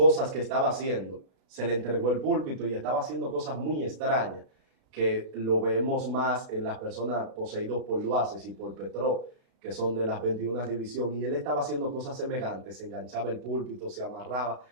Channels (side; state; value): left; late; 36 ms